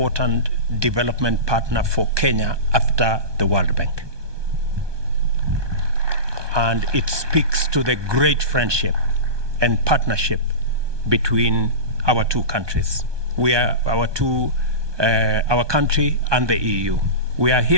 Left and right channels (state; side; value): late; left; 1.2 ms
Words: development partner for Kenya after the World Bank. And it speaks to the great friendship and partnership between our two countries. We are our country and the EU. We are